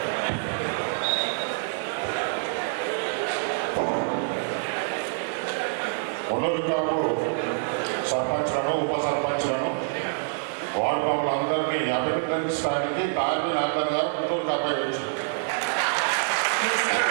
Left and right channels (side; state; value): left; silent; digital silence